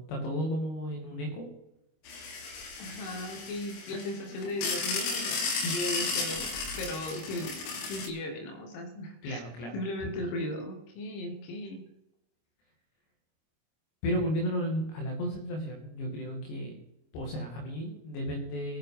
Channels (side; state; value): right; late; 26 ms